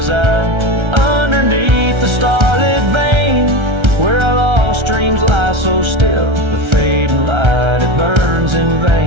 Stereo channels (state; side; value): late; left; 1.3 ms